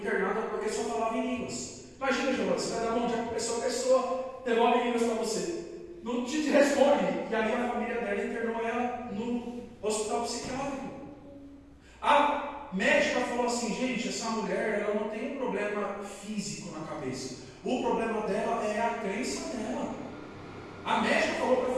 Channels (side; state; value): both; identical; correlation 1.00